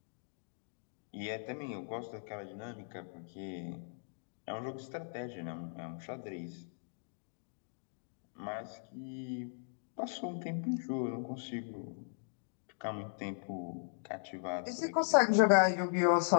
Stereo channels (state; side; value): silent; right; digital silence